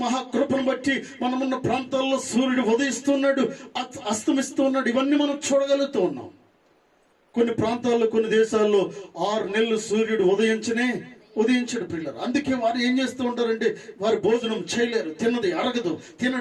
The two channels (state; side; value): identical; both; correlation 1.00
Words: మహాకృపను బట్టి మనమున్న ప్రాంతాల్లో సూర్యుడు ఉదయిస్తున్నాడు, అస్తమిస్తూ ఉన్నాడు. ఇవన్నీ మనం చూడగలుగుతూ ఉన్నాం. కొన్ని ప్రాంతాల్లో, కొన్ని దేశాల్లో 6 నెలలు సూర్యుడు ఉదయించడు. పిల్లలు, అందుకే వారు ఏం చేస్తూ ఉంటారంటే వారు భోజనం చేయలేరు, తిన్నది అరగదు,